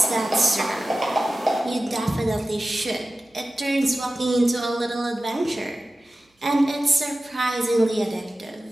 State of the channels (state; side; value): normal; both; correlation 0.95